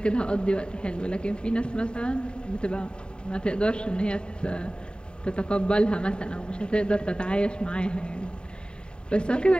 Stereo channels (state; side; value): late; right; 0.050 ms